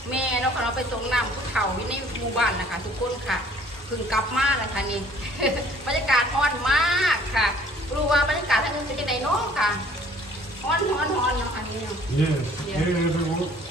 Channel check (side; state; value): both; normal; correlation 0.55